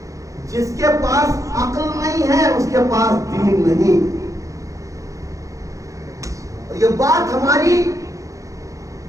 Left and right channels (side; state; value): left; late; 0.16 ms